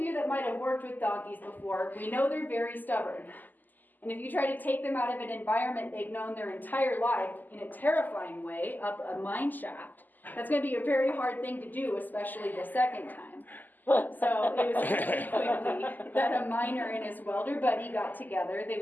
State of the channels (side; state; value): right; late; 0.085 ms